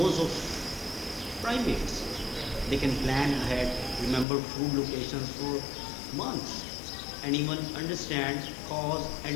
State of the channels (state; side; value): drops out; right; at 4.2 s